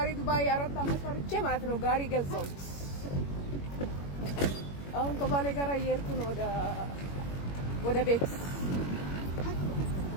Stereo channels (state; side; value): late; right; 21 ms